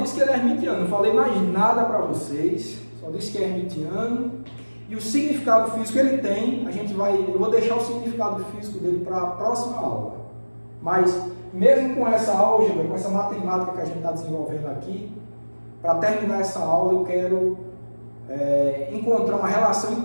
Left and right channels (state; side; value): inverted; both; correlation -1.00